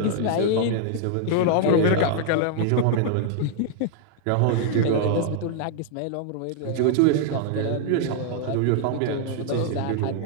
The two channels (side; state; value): both; different; correlation 0.00